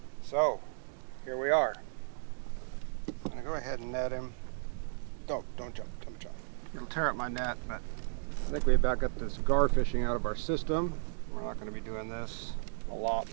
so here we are. I'm gonna go ahead and net him. Don't jump. It'll tear up my net, but I think we about got this gar fishing out of our system. We're not gonna be doing this a lot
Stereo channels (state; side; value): silent; left; digital silence